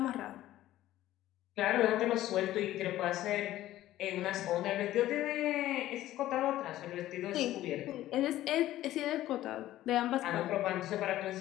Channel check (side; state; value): right; quieter; 14.4 dB